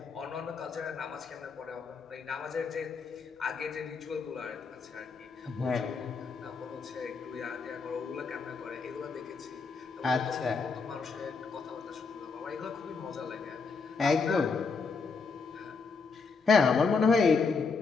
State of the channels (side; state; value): right; quieter; 4.8 dB